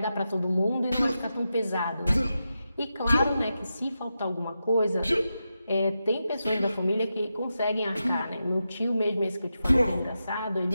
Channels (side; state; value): both; inverted; correlation -0.89